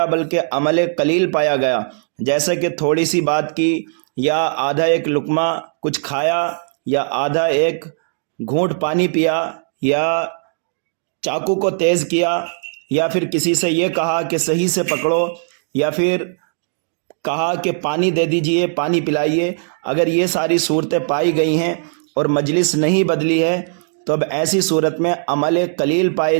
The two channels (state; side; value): silent; left; digital silence